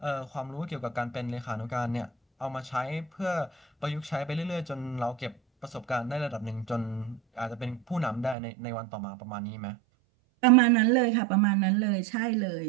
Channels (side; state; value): left; drops out; at 8.3 s